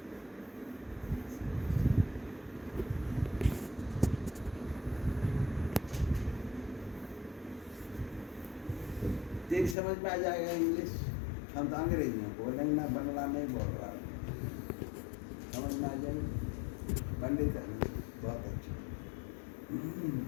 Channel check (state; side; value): drops out; right; at 9.8 s